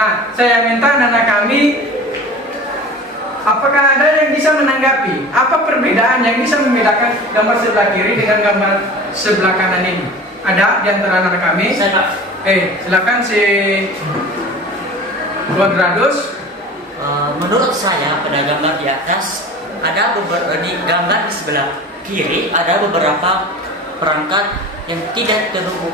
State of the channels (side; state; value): both; normal; correlation 0.38